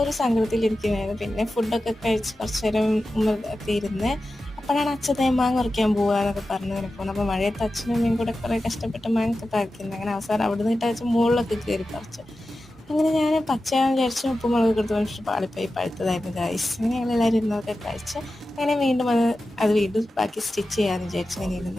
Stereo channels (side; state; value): both; normal; correlation 0.93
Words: ഒരു സങ്കടത്തിലിരിക്കുകയായിരുന്നു. പിന്നെ ഫുഡൊക്കെ കഴിച്ച് കുറച്ച് നേരം ഒക്കെ ഇരുന്ന് അപ്പോഴാണ് അച്ഛൻ മാങ്ങ പറിക്കാൻ പോവുക എന്നൊക്കെ പറഞ്ഞു ഇങ്ങനെ പോകുന്നത്. അപ്പോൾ മഴയത്ത് അച്ഛനും അമ്മയും കൂടെ കുറേ കഷ്ടപ്പെട്ട് മാങ്ങ ഒക്കെ പറിക്കുന്നത്. അങ്ങനെ അവസാനം അവിടെ നിന്നിട്ട് അച്ഛൻ മുകളിലൊക്കെ കയറി പറിച്ചു. അങ്ങനെ ഞാൻ പച്ചയാണെന്ന് വിചാരിച്ചു ഉപ്പും മുളകൊക്കെ എടുത്ത് വെച്ചിട്ട് പാളിപ്പോയി പഴുത്തതായിരുന്നു ഗൈസ്. അങ്ങനെ ഞങ്ങളെല്ലാവരും ഇരുന്നൊക്കെ കഴിച്ച് അങ്ങനെ വീണ്ടും അത് വീണ്ടും ബാക്കി സ്റ്റിച്ച് ചെയ്യാമെന്ന് വിചാരിച്ചു ഇങ്ങനെ